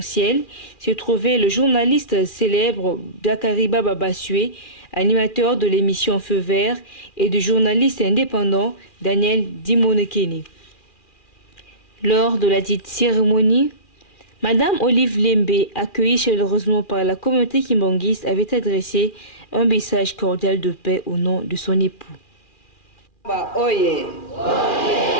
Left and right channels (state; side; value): late; right; 2.4 ms